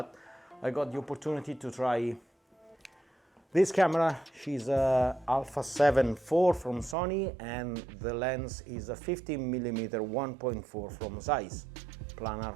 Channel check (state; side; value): drops out; left; at 7.0 s